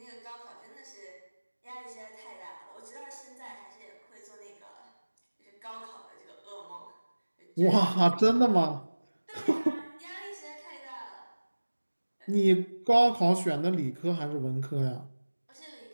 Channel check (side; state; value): both; inverted; correlation -1.00